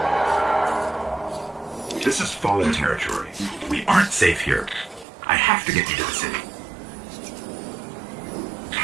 This is Fallen territory. We aren't safe here. I have to get you to the city.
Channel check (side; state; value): left; drops out; at 5.1 s